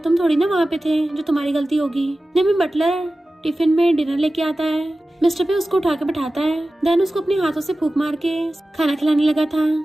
थोड़ी ना वहाँ पे थे जो तुम्हारी गलती होगी। नहीं बटलर टिफिन में डिनर लेके आता है, मिस्टर पे उसको उठा के बैठाता है, देन उसको अपने हाथों से फूंक मार के खाना खिलाने लगा था।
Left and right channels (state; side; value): normal; both; correlation 0.95